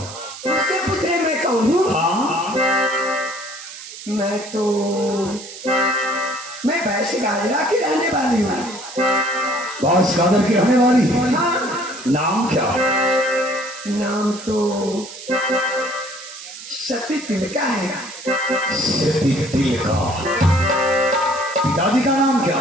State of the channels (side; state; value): right; noise; hiss, 13 dB below the sound